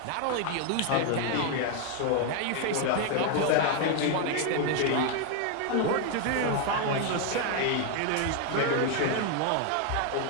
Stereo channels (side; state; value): both; different; correlation 0.01